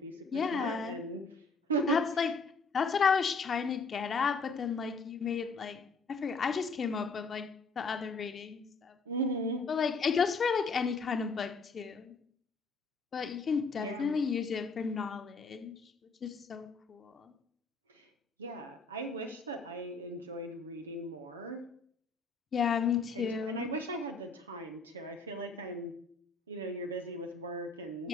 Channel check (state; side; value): quieter; right; 4.1 dB